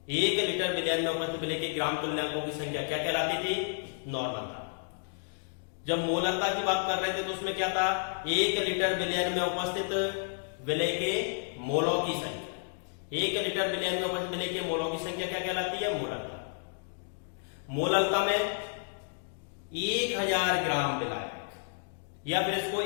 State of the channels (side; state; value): right; silent; digital silence